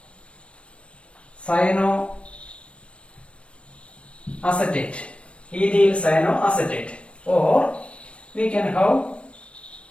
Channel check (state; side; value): late; right; 0.060 ms